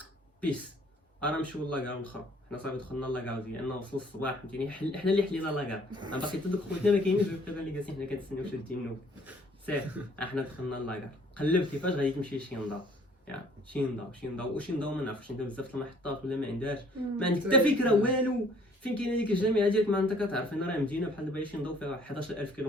بيس انا نمشيو لاكار الاخر. حنا صافي دخلنا لاكار ديالنا وصل الصباح فهمتيني حنا اللي حلينا لاكار انا باقي حتى دوك خوتنا ما كاينينش دابا اللي جالسين حنا كنتسناو شادين النوم. سير حنا دخلنا لاكار قلبت كيفاش غادي تمشي لشي نضاو شي نضاو ما نعرفش انت بزاف المحطات ولا ما عندهاش ما عندك حتى فكره والو فين كاينه ديك الجامعه ديالك ما انت كتعرف ان راه مدينه بحال دابا شي نضاو فيها 11000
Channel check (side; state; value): both; normal; correlation 0.58